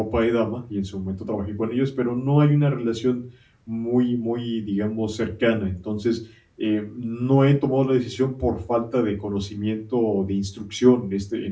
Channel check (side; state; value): both; identical; correlation 1.00